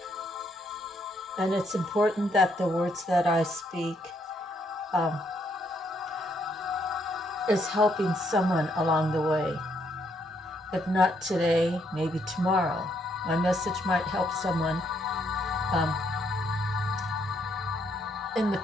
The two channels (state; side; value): normal; both; correlation 0.73